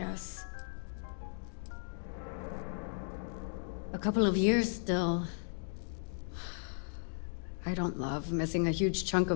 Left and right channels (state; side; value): silent; right; digital silence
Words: A couple of years still. I don't love missing a huge chunk